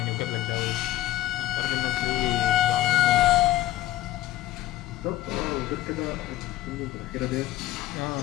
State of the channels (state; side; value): quieter; right; 14.8 dB